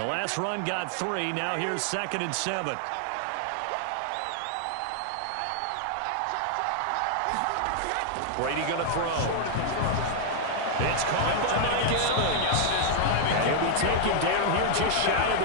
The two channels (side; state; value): both; different; correlation -0.01